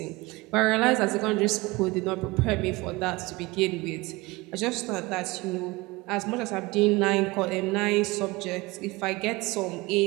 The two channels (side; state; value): left; quieter; 22.6 dB